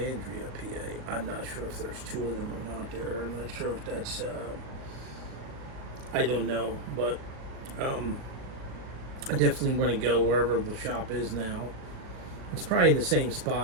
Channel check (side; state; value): left; late; 38 ms